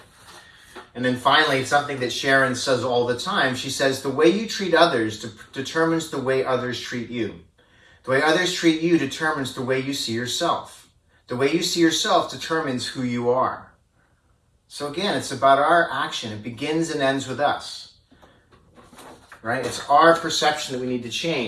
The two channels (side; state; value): both; identical; correlation 1.00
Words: And then finally, something that Sharon says all the time, she says, the way you treat others determines the way others treat you. The way others treat you determines the way you see yourself. The way you see yourself determines who you are. So again, it's about our action. It begins and ends with us, right? It's our perception that we need to